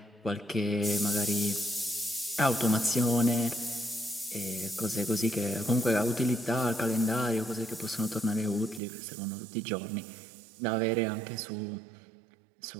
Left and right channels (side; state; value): left; drops out; at 8.8 s